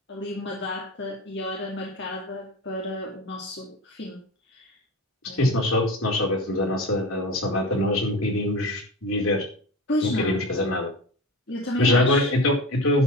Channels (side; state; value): both; normal; correlation 0.30